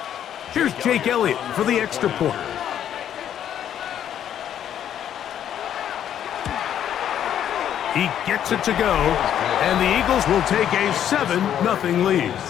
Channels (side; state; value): right; quieter; 10.1 dB